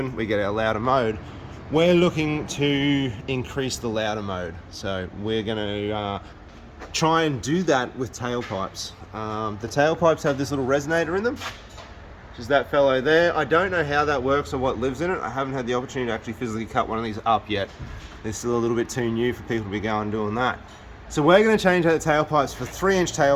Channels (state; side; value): identical; both; correlation 1.00